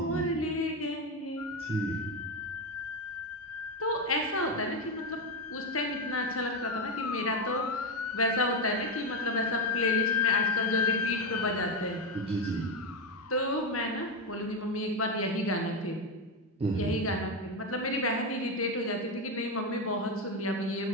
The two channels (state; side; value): normal; both; correlation 0.11